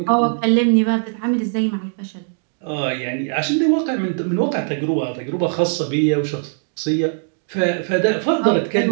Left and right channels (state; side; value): silent; left; digital silence